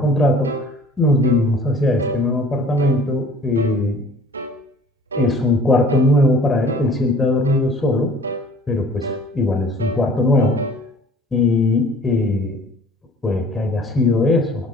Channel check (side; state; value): both; normal; correlation 0.50